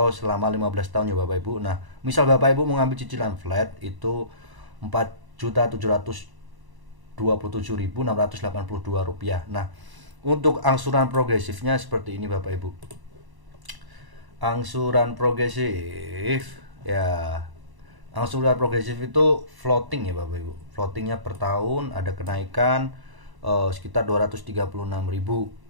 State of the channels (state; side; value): late; left; 1.0 ms